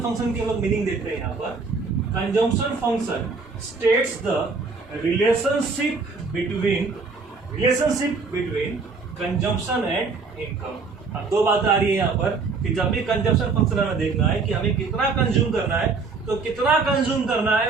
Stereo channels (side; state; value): left; quieter; 4.4 dB